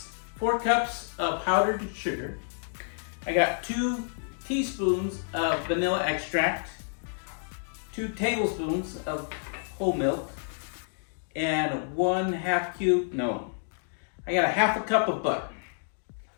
4 cups of powdered sugar. I got 2 teaspoons of vanilla extract, 2 tablespoons of whole milk, and 1/2 cube, no, I got a 1/2 cup of butter.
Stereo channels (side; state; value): right; silent; digital silence